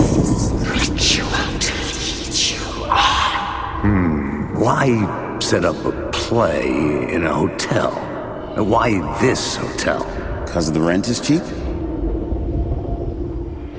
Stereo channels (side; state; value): both; identical; correlation 1.00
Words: Why set up a play in a hotel? And why this hotel? Because the rent is cheap?